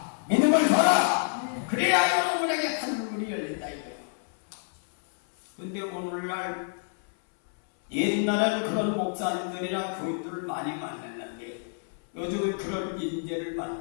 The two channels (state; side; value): silent; right; 59 dB below the other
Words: 믿음을 줘라. 그래야 여러분에게 하늘문이 열린다 이거야. 근데 오늘날 옛날에는 그런 목사님들이랑 교인들을 많이 만났는데 요즘은 그런 인재를